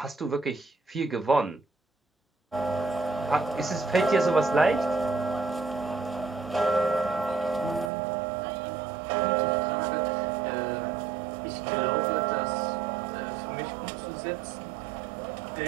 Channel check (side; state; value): left; drops out; at 7.9 s